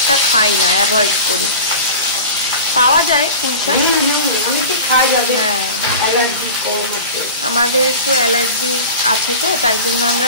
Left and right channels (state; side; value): inverted; both; correlation -0.34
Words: খাই না, অ্যাভয়েড করি। পাওয়া যায় পুঁই শাক, হ্যাঁ, আমাদের একটু অ্যালার্জি আছে তো, তাই জন্য